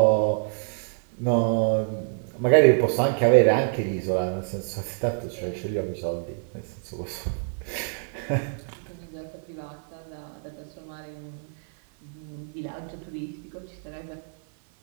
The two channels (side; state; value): left; silent; 56 dB below the other